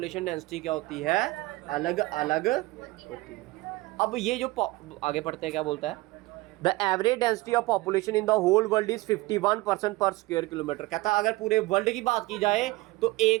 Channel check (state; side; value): quieter; left; 20.7 dB